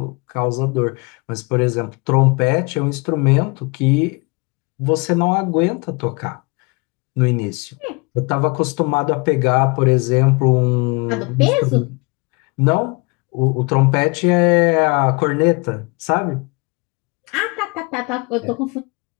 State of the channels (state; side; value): quieter; right; 29.3 dB